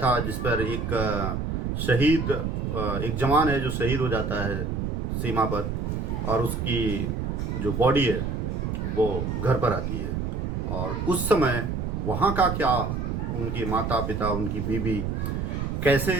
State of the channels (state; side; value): noise; right; rumble, 2 dB below the sound